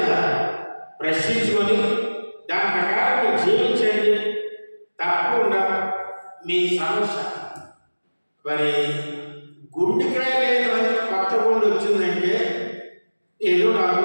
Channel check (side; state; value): both; inverted; correlation -1.00